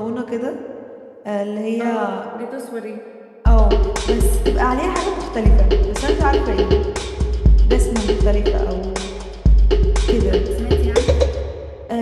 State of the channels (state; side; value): identical; both; correlation 1.00